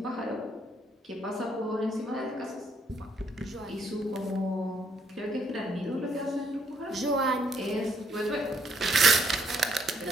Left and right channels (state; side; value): normal; both; correlation 0.71